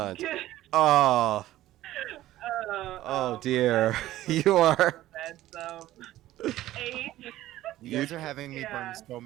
Good. Oh, Oh, dear. that's You are. bad. 8. You guys are having me burn Yeah. so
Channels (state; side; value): quieter; left; 14.8 dB